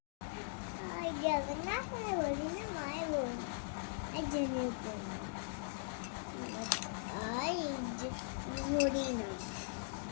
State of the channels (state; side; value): silent; right; digital silence